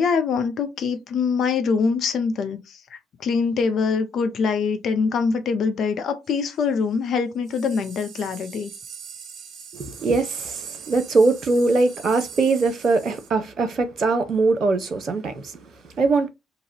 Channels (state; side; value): normal; both; correlation 0.74